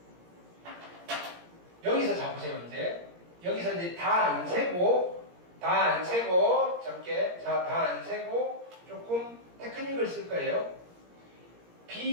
여기서 잡으세요. 이제 여기서 이제 다 안 세고 적게 다 안 세고 조금 테크닉을 쓸 거예요.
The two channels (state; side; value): late; left; 17 ms